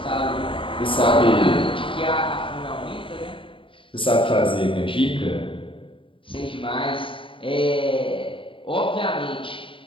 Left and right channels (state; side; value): late; right; 0.25 ms